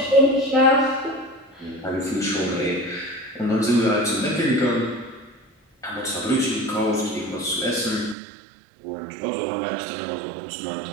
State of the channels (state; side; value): drops out; left; at 8.2 s